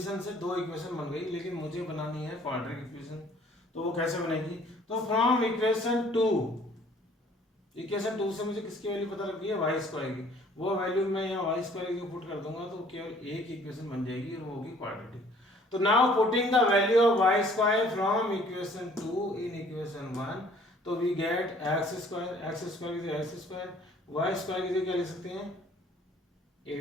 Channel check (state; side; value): normal; both; correlation 0.56